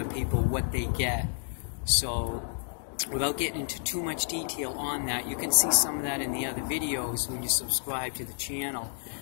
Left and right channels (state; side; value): silent; right; digital silence